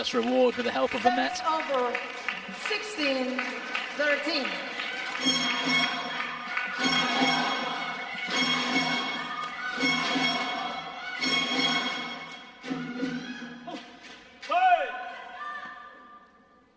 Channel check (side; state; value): both; identical; correlation 1.00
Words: reward with the help of the net. Over. 16-13.